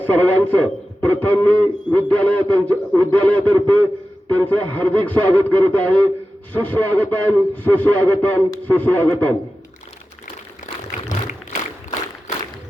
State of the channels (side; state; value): both; normal; correlation 0.93